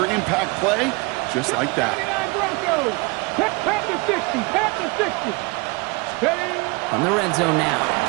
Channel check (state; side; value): quieter; left; 26.6 dB